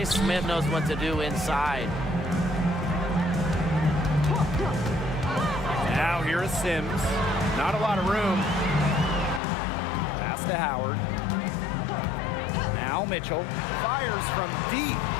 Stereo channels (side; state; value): right; drops out; at 9.4 s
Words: Smith knows what to do inside. Now here is Sims. Not a lot of room. Pass to Howard. Now Mitchell fires from deep.